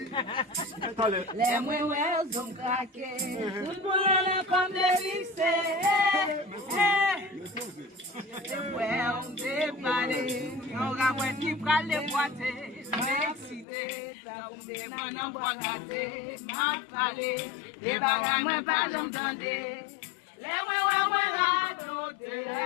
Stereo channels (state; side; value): drops out; right; at 13.7 s